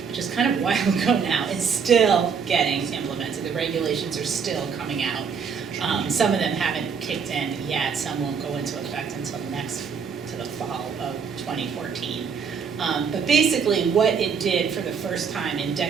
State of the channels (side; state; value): left; quieter; 6.2 dB